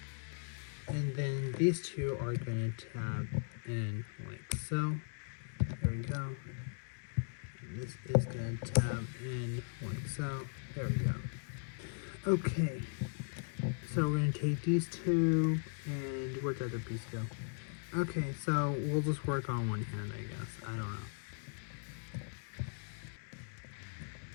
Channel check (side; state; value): right; silent; digital silence